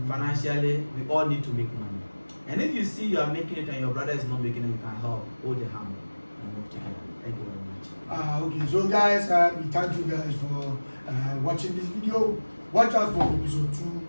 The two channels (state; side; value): inverted; both; correlation -1.00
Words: Financially, we all need to make money. And if you see you are making it and your brother is not making it, you can help, hold the hand and move together. Thank you very much. Okay, so guys, we thank you guys for watching this video. Watch out for episode 2